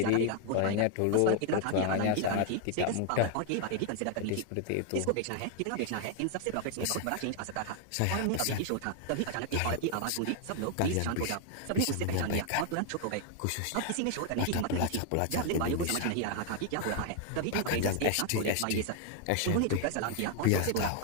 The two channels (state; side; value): different; both; correlation 0.00